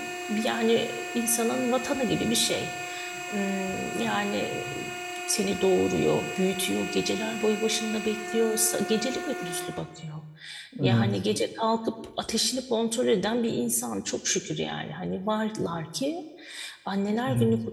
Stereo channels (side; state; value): both; identical; correlation 1.00